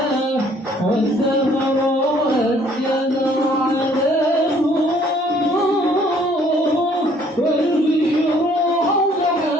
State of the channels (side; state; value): both; normal; correlation 0.61